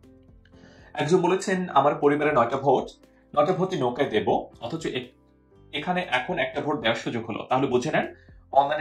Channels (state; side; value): identical; both; correlation 1.00